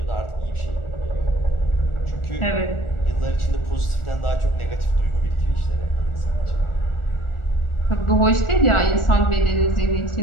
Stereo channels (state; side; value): late; right; 1.4 ms